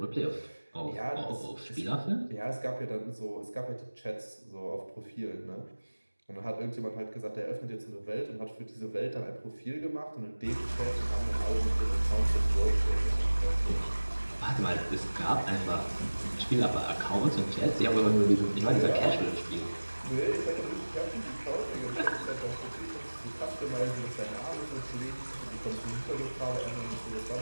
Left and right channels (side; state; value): both; inverted; correlation -1.00